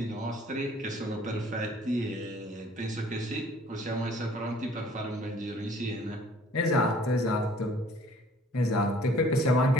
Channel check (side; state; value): both; normal; correlation 0.55